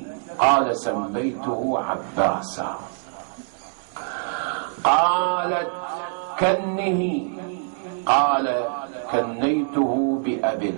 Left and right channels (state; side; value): silent; left; digital silence